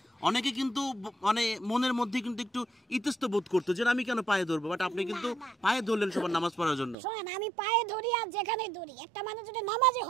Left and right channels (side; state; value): left; drops out; at 7.0 s